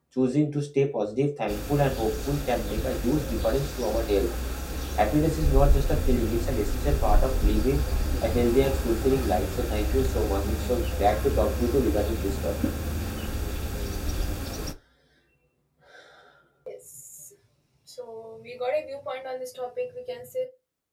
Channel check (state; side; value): identical; both; correlation 1.00